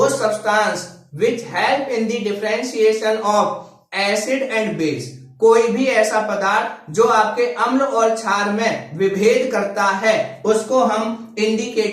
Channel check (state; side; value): identical; both; correlation 1.00